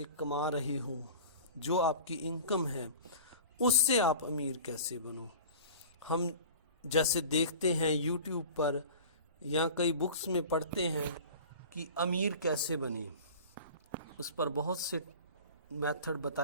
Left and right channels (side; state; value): both; inverted; correlation -0.38